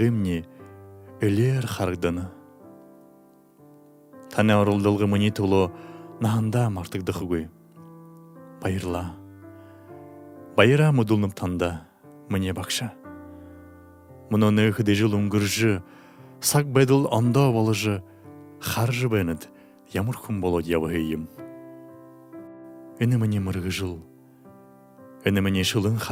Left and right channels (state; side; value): identical; both; correlation 1.00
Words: өлер харгданы. Тане орылдылғы мұни тұлы нағында мартықдықы көй. Байырла. Байыра мұдылнып танда, мұне бақша. Мұны өкіде жыл үңгіржі, сақ бәділ анда балыжы, харжы бәнід, ямыр күн болод явығыйым. Үні мұне мұрғы жыл. Үні мұне шылын